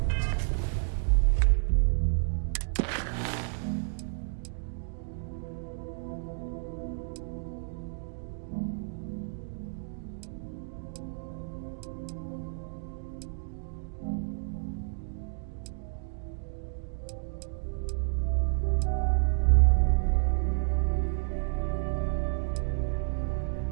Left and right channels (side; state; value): left; silent; digital silence